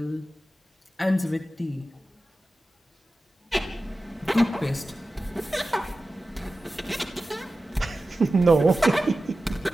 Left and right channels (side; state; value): both; normal; correlation 0.95